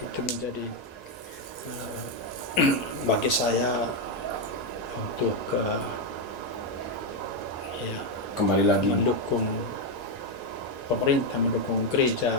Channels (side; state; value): both; normal; correlation 0.04